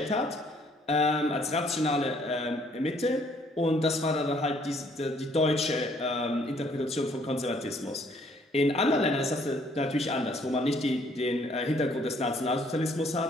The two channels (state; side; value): normal; both; correlation 0.63